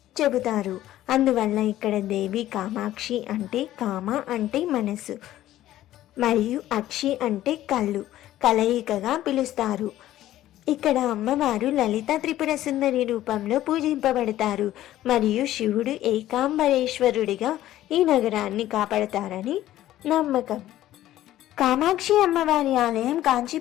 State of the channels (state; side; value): quieter; right; 13.8 dB